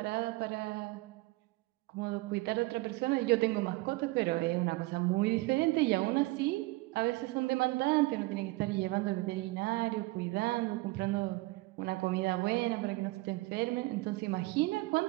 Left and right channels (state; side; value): quieter; left; 21.6 dB